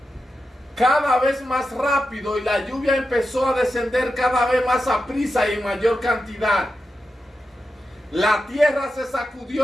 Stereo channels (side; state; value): both; normal; correlation 0.89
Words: cada vez más rápido y la lluvia empezó a descender cada vez más a prisa y en mayor cantidad. La tierra se